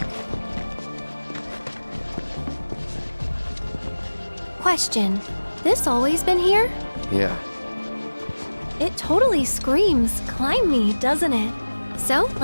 Question. This always been here? Yeah. It totally screams climb me, doesn't it? So,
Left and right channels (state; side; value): inverted; both; correlation -1.00